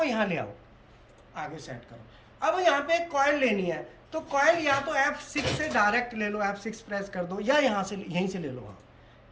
यहाँ ले आओ, आगे सेट करो। अब यहाँ पे एक कॉइल लेनी है, तो कॉइल या तो F6 से डायरेक्ट ले लो, F6 प्रेस कर दो, या यहाँ से यहीं से ले लो। हाँ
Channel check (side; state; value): both; identical; correlation 1.00